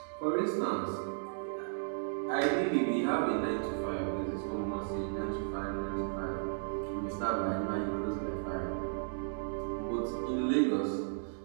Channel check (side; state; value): left; silent; digital silence